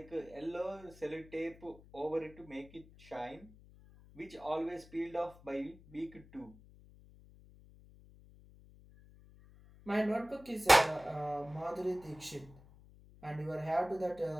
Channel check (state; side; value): noise; left; hum, 22 dB below the sound